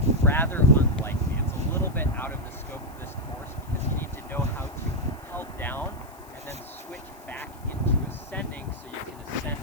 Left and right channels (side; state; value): left; noise; hiss, 24 dB below the sound